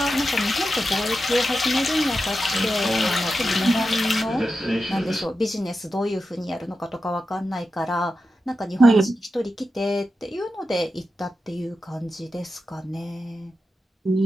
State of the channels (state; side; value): normal; both; correlation 0.90